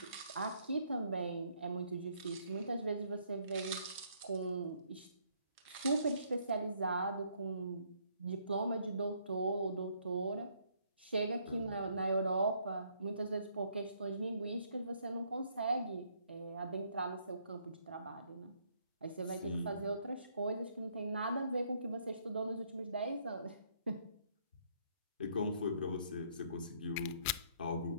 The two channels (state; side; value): inverted; both; correlation -0.68